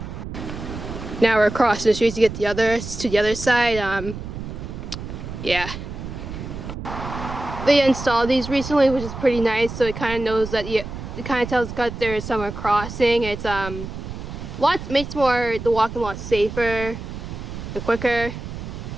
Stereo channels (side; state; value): right; noise; rumble, 9 dB below the sound